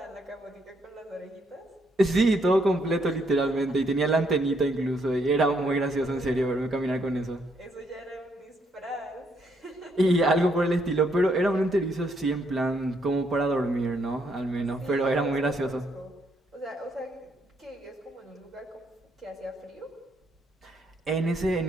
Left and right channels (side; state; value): both; normal; correlation 0.73